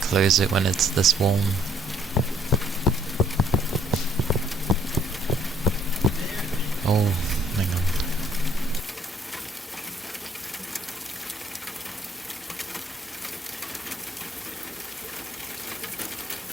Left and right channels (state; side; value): normal; both; correlation 0.64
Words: it when it's this warm. Oh, hang on.